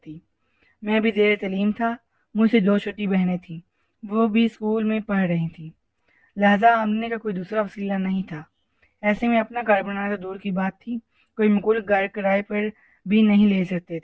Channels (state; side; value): identical; both; correlation 1.00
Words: میں بھی زیر تعلیم تھا، مجھ سے دو چھوٹی بہنیں تھیں، وہ بھی اسکول میں پڑھ رہی تھیں، لہذا آمدنی کا کوئی دوسرا وسیلہ نہیں تھا۔ ایسے میں اپنا گھر بنانا تو دور کی بات تھی، کوئی معقول گھر کرائے پر بھی نہیں لے سکتے